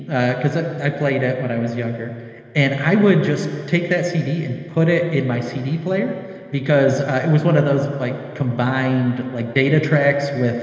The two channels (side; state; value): both; identical; correlation 1.00